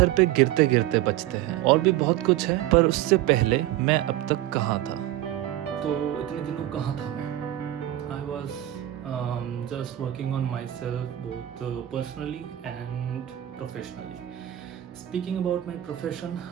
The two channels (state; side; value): quieter; left; 14.1 dB